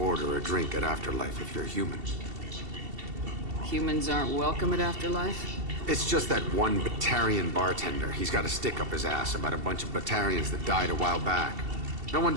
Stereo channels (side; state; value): left; late; 2.7 ms